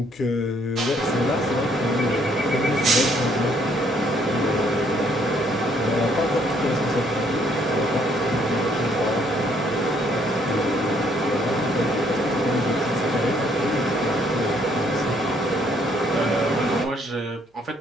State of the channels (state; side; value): normal; both; correlation 0.66